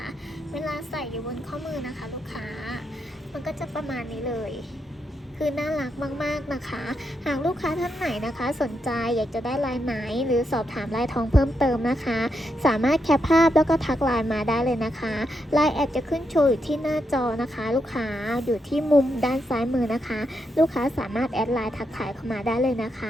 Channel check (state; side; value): normal; both; correlation 0.82